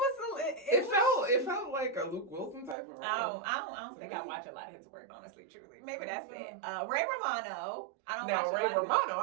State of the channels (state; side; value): drops out; left; at 2.8 s